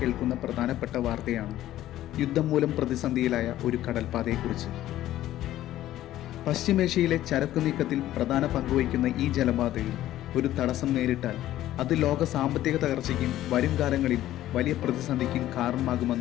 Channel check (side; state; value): right; quieter; 13.8 dB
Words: പ്രധാനപ്പെട്ട വാർത്തയാണ് യുദ്ധം മൂലം പ്രതിസന്ധിയിലായ ഒരു കടൽപ്പാതയെക്കുറിച്ച്. പശ്ചിമേഷ്യയിലെ ചരക്കു നീക്കത്തിൽ പ്രധാന പങ്കുവഹിക്കുന്ന ഈ ജലപാതയിൽ ഒരു തടസ്സം നേരിട്ടാൽ അത് ലോക സാമ്പത്തിക തകർച്ചയ്ക്കും വരും കാലങ്ങളിൽ വലിയ പ്രതിസന്ധിക്കും